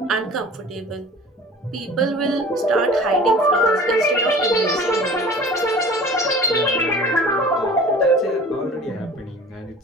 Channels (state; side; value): normal; both; correlation 0.44